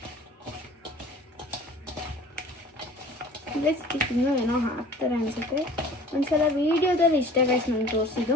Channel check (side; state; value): both; normal; correlation 0.46